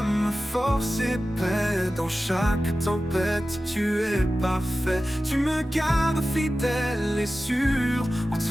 force et paix. Dans chaque tempête, tu es parfait. Tu me gardes fidèle et sûr. En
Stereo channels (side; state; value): both; normal; correlation 0.95